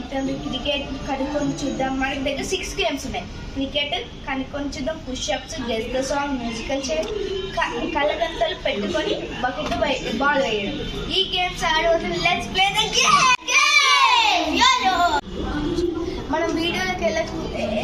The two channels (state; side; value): identical; both; correlation 1.00